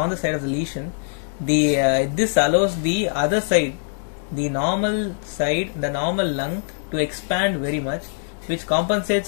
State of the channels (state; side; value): silent; right; digital silence